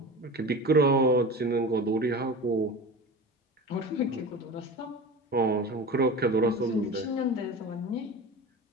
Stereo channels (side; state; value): both; normal; correlation 0.32